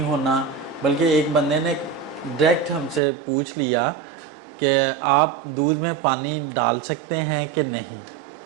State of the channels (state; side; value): drops out; left; at 3.0 s